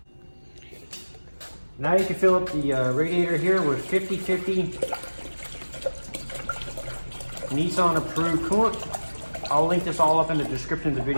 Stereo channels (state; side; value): inverted; both; correlation -1.00